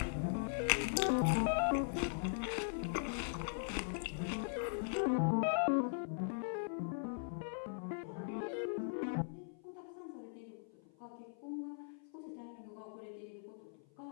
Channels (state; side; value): silent; right; 51 dB below the other